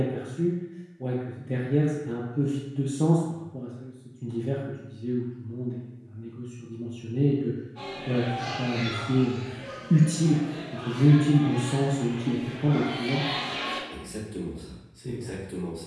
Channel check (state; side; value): identical; both; correlation 1.00